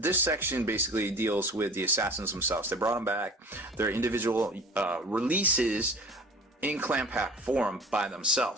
section basically deals with the assassins themselves. They brought them back. Their individual releases in clan pack form by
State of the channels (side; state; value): both; normal; correlation 0.42